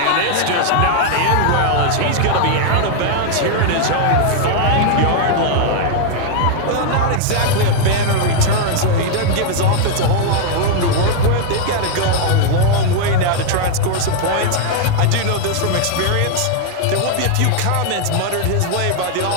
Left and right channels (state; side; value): different; both; correlation 0.00